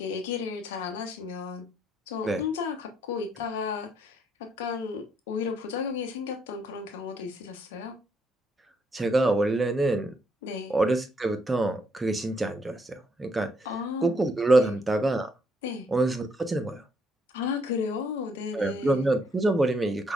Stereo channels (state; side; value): normal; both; correlation 0.72